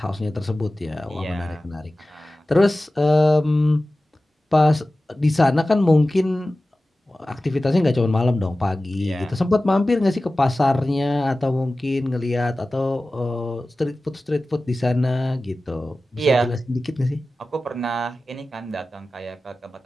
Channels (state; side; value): normal; both; correlation 0.96